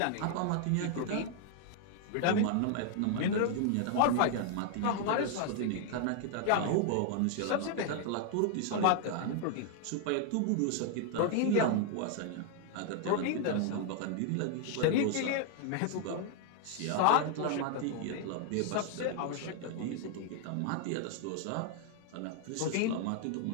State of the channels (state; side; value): different; both; correlation 0.00